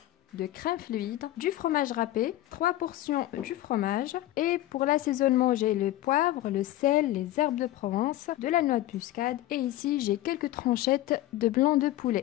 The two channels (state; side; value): quieter; right; 14.9 dB